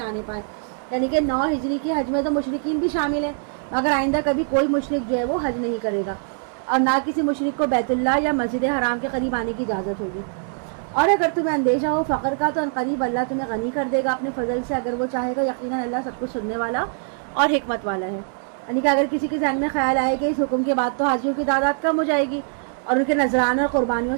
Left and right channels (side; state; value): left; silent; 64 dB below the other